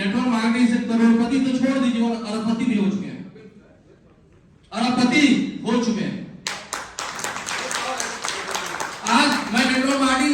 मार्केटिंग से करोड़पति तो छोड़ दीजिए और अरबपति भी हो चुके हैं। अरबपति हो चुके हैं। आज मैं नेटवर्क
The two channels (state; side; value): identical; both; correlation 1.00